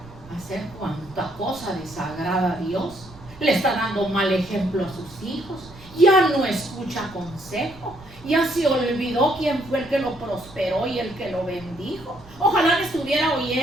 a hacer cuanta cosa desagrada a Dios. Le está dando mal ejemplo a sus hijos. Ya no escucha consejo. Ya se olvidó quién fue el que lo prosperó y el que lo bendijo. Ojalá me estuviera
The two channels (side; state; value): right; noise; rumble, 20 dB below the sound